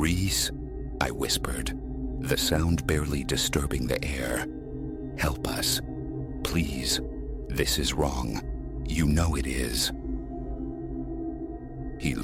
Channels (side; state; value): both; identical; correlation 1.00